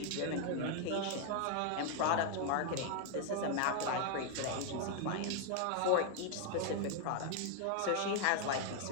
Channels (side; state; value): both; different; correlation 0.00